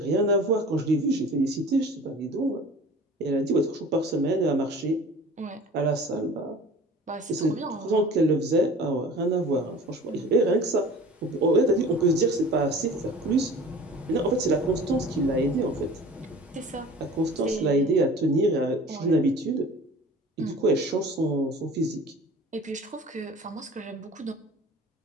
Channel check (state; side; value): normal; both; correlation 0.42